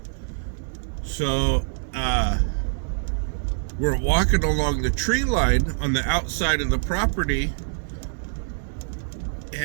So we're walking along the tree line on the outside of the property,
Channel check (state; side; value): silent; left; digital silence